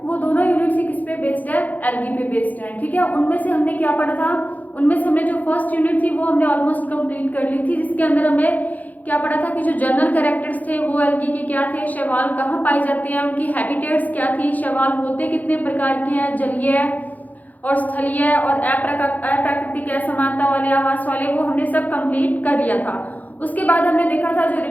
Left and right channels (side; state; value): right; late; 0.080 ms